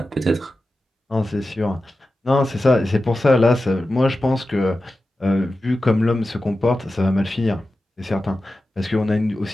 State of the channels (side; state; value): both; normal; correlation 0.93